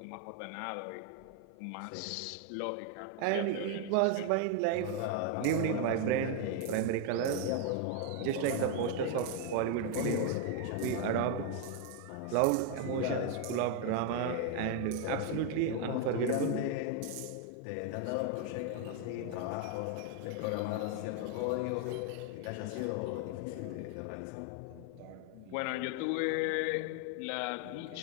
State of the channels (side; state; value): both; different; correlation 0.01